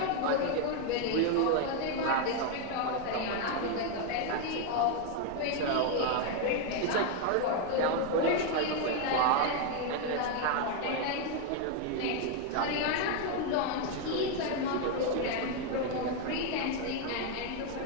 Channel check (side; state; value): both; different; correlation 0.01